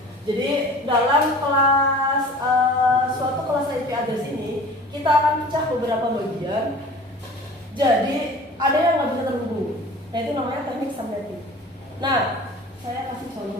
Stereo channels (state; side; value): normal; both; correlation 0.43